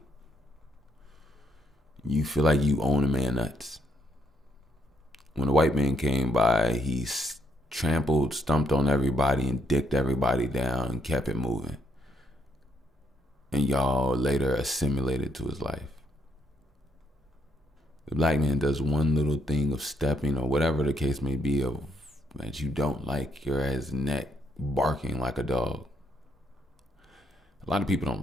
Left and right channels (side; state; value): both; normal; correlation 0.74